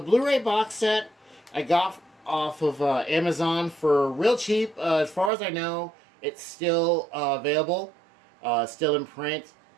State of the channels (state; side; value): drops out; left; at 5.3 s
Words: Blu-ray box set I got off of Amazon for real cheap. As far as I know, it's still available, still in print.